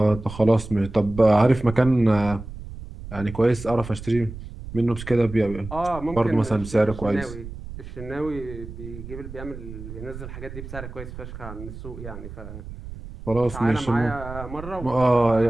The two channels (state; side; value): noise; right; rumble, 12 dB below the sound